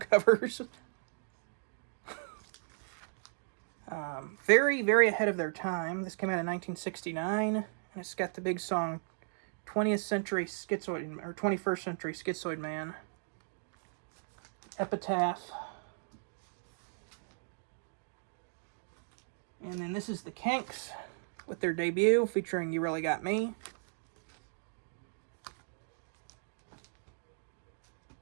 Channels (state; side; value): silent; left; digital silence